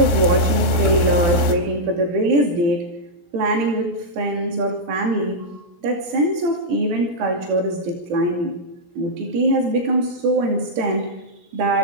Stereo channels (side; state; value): left; late; 16 ms